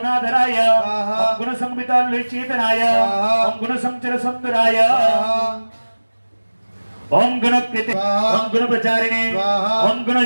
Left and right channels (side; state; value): both; inverted; correlation -1.00